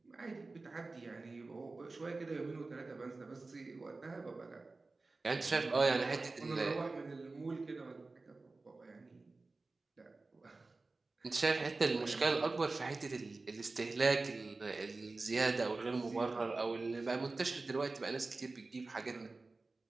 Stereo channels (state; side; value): quieter; left; 3.5 dB